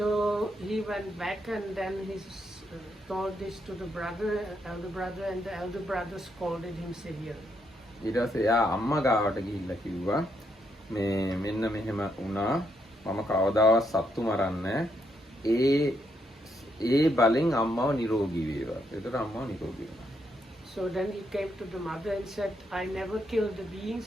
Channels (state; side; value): normal; both; correlation 0.77